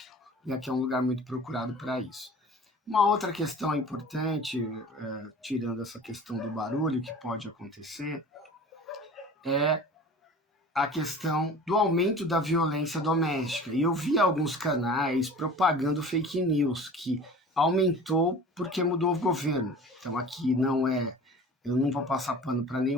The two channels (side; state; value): both; normal; correlation 0.41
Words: E aqui é um lugar muito procurado para isso. Uma outra questão importante, tirando essa questão do barulho que pode acontecer, é a questão do aumento da violência doméstica. E eu vi alguns canais propagando fake news, que aumentou porque mudou o governo. Então aqui eu não vou passar pano para